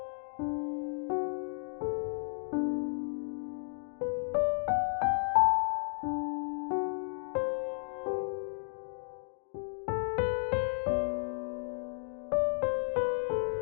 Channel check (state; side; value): silent; right; 55 dB below the other